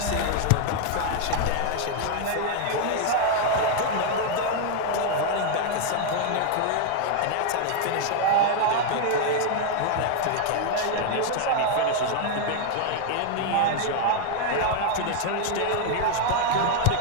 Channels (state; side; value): different; both; correlation 0.00